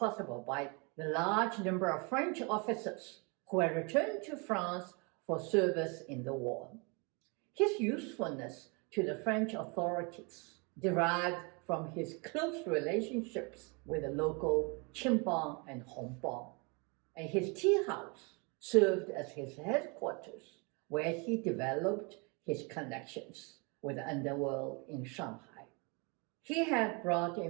by the large number of French officers who had returned to France for service in the war. His usefulness to the French authorities derived from his close relationships with the local Qimbang and Hongbang, and his tea house served as his headquarters, where he developed his connections with the underworld in Shanghai. He had brought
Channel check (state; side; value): quieter; left; 31.7 dB